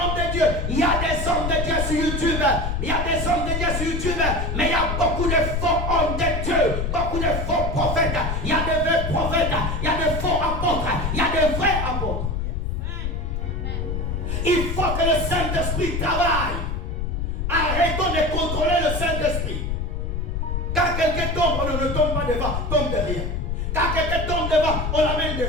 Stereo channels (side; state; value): left; noise; rumble, 2 dB below the sound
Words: de Dieu. Il y a des hommes de Dieu sur YouTube. Il y a des hommes de Dieu sur YouTube. Mais il y a beaucoup de faux hommes de Dieu. Beaucoup de faux prophètes. Il y a de vrais prophètes. Il y a de faux apôtres. Il y a de vrais apôtres. Il faut que le Saint-Esprit travaille. Arrêtons de contrôler le Saint-Esprit. Quand quelqu'un tombe, on ne tombe pas devant, tombe derrière. Quand quelqu'un tombe devant, on l'amène